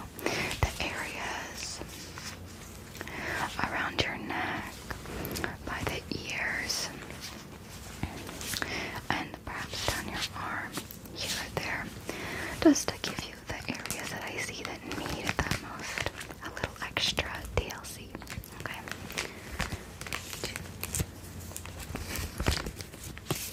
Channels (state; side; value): identical; both; correlation 1.00